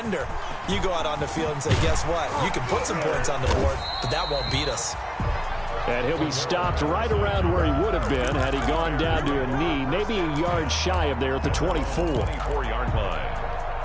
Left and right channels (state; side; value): identical; both; correlation 1.00